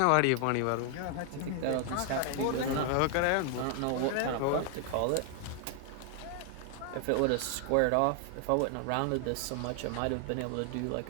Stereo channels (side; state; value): both; different; correlation 0.00